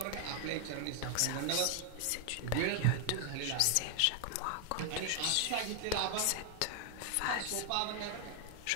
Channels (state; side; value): different; both; correlation 0.00